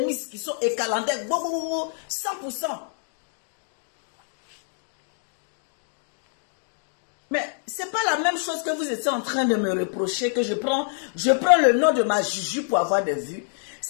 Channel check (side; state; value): right; silent; digital silence